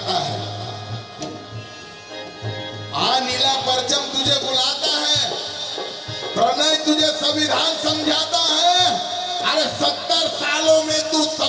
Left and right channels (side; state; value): both; identical; correlation 1.00